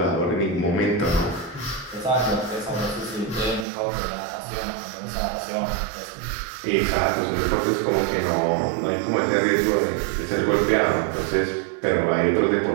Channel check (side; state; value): left; drops out; at 3.7 s